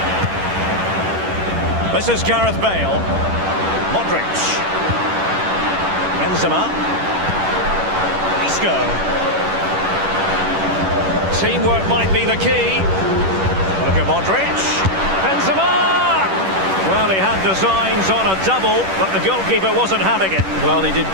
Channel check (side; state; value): left; late; 10 ms